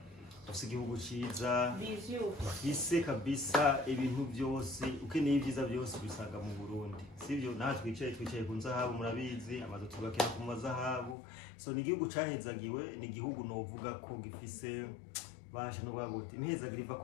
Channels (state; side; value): drops out; right; at 11.2 s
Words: dufise igihugu ciza, dufise kabisa ibintu byose, ukeneye ibyiza byose bisaga mu Burundi. Sivyo natwe twicaye ku nzahabu murabizi, amazu tubakira ku mazahabu. So ni igihugu cahezagiwe, ni igihugu novuga ko gifise basha no bagote imhezagira iva